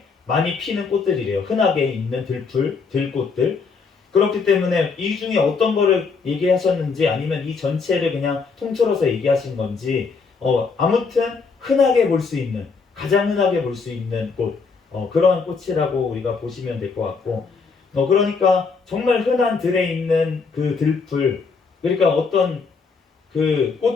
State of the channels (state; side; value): quieter; right; 4.9 dB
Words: 많이 피는 꽃들이래요. 흔하게 있는 들꽃들. 그렇기 때문에 이 중에 어떤 거를 얘기하셨는지 아니면 이 전체를 그냥 통틀어서 얘기하신 건지 아무튼 흔하게 볼 수 있는 가장 흔하게 볼 수 있는 꽃 그러한 꽃이라고 우리가 보시면 될 것 같고 그러니까 정말 흔한 들에 있는 그 들풀 그러니까 어떤 그